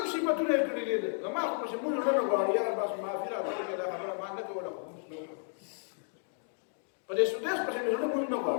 صفتونه یې کړي دي. زما خو پسې مونږ نه غواړي، یاره بس معافي راته وکړې، دا خبره ما نه کوله، خو مونږ نه وکړه. په دې سودیس پسې مې زړه مونږ نه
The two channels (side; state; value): right; silent; 56 dB below the other